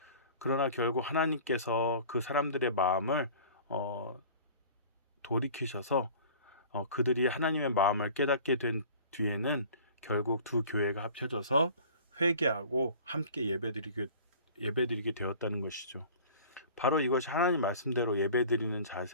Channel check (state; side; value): inverted; both; correlation -0.44